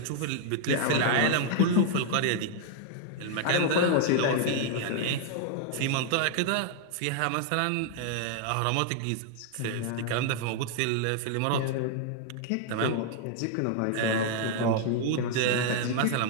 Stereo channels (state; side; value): different; both; correlation 0.00